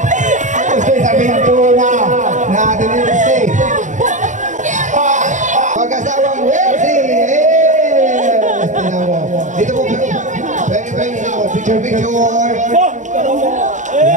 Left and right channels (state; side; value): late; left; 0.36 ms